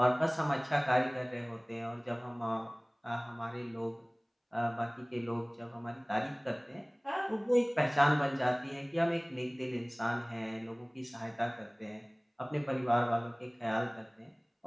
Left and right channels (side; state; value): both; identical; correlation 1.00